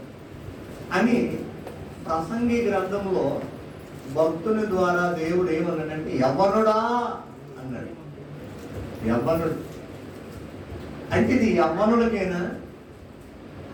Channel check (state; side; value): identical; both; correlation 1.00